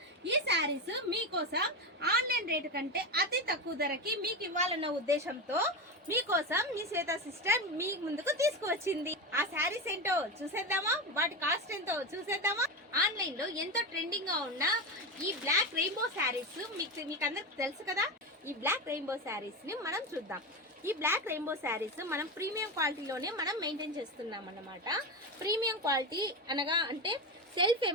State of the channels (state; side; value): normal; both; correlation 0.17